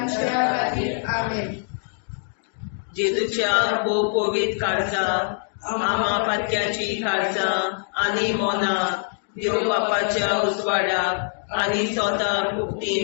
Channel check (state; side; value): silent; right; digital silence